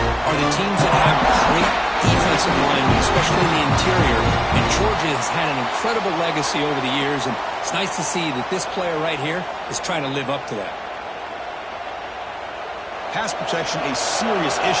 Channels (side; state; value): both; identical; correlation 1.00